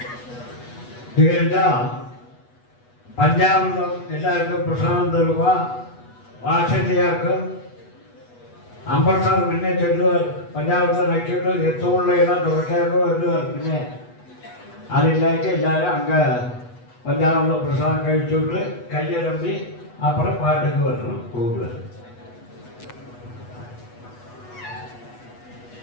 പഞ്ചാമൃതം എല്ലാവർക്കും പ്രസാദം തരുക. വാത്സല്യർക്ക് അമ്പസാർ മുന്നേ ചൊല്ലുക. പഞ്ചാമൃതം നക്കിയിട്ട് എത്തുമുള്ള ഇടം തുടക്കാക്കോ എന്നുക. പിന്നെ അതിലേക്ക് എല്ലാവരും അങ്ങ് പഞ്ചാമൃത പ്രസാദം കഴിച്ചിട്ട് കയ്യലമ്പി അപ്പുറം പാട്ടൊക്കെ വരണം കൂടുതൽ.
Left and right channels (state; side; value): late; right; 8.2 ms